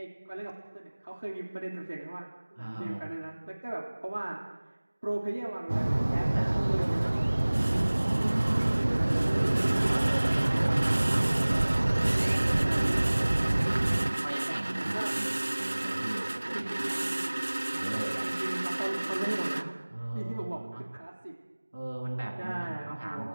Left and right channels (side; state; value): both; inverted; correlation -1.00